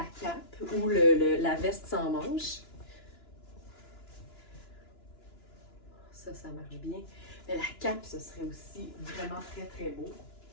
cape ou la veste sans manches. Ça marche bien. Mais la cape, ce serait aussi vraiment très beau.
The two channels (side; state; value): right; late; 2.9 ms